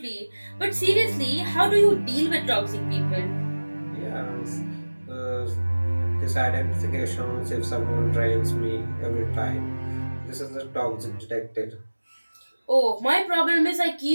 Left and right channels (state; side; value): inverted; both; correlation -1.00